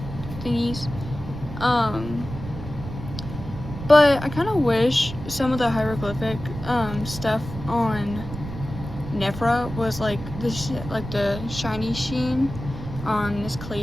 thingies. But I kind of wish some of the hieroglyphic stuff on Nefera was like the shiny sheen on Miss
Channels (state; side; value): noise; right; rumble, 10 dB below the sound